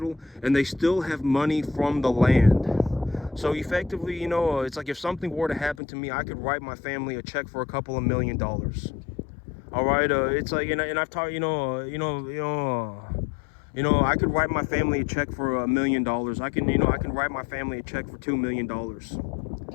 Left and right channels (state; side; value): drops out; right; at 5.8 s